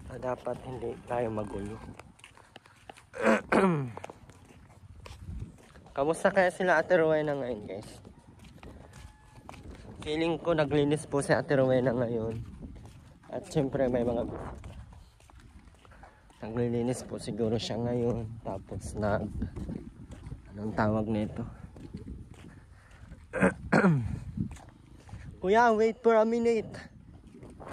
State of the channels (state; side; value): identical; both; correlation 1.00